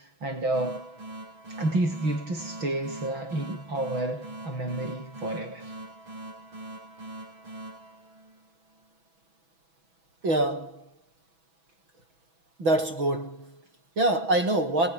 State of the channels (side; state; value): left; late; 6.1 ms